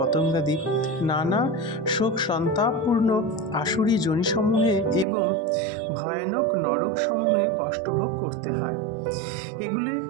নানা শোক সন্তাপপূর্ণ আসুরি যোনিসমূহে এবং ভয়ানক নরকসমূহে কষ্টভোগ করতে হয়। এগুলি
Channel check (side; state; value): left; drops out; at 5.1 s